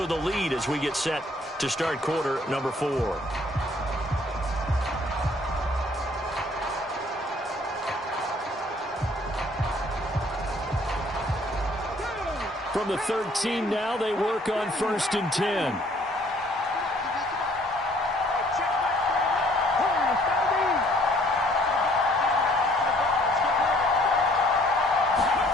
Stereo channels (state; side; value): normal; both; correlation 0.60